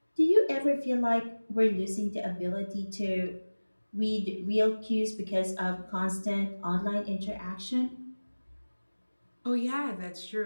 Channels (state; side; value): inverted; both; correlation -1.00